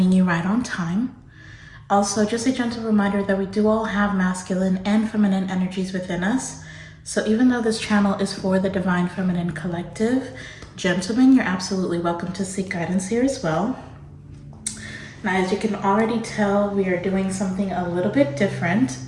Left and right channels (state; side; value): identical; both; correlation 1.00